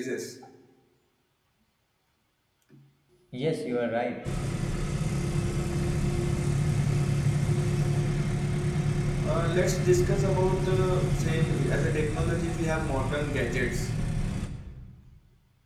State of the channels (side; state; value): both; identical; correlation 1.00